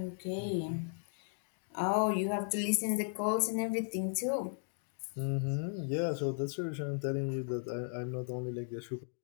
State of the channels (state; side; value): silent; right; digital silence